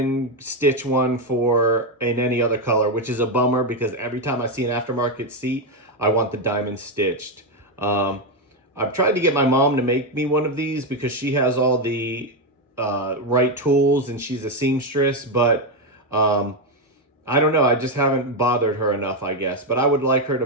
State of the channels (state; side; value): normal; both; correlation 0.07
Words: stitch one in any other color, which is a bummer because every time I see an aftermarket seat, I want the diamond stitched. I've tried to get my mom to make me one of these because she has all the right tools and she's a seamstress, but I don't know. I just haven't bothered her enough, I guess. But I would like her to